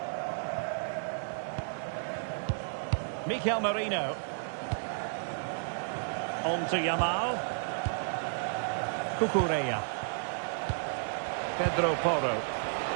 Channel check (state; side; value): silent; left; digital silence